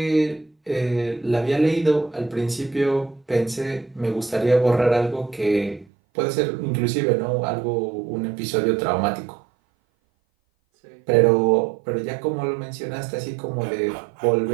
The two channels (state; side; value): drops out; left; at 5.9 s